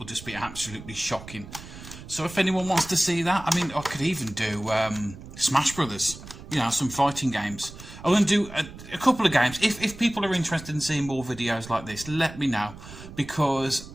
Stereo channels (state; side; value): noise; right; rumble, 15 dB below the sound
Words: just be absolutely shocking. So if anyone wants to see that, I mean, I could even do Smash Brothers. You know, some fighting games. I'm going to do a couple of games. If people are interested in seeing more videos like this, let me know, because